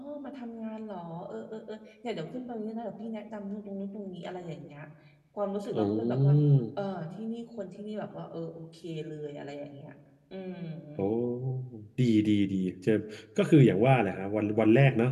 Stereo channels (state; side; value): identical; both; correlation 1.00